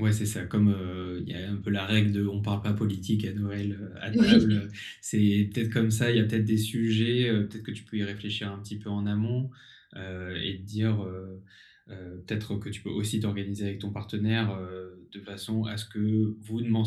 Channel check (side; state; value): both; identical; correlation 1.00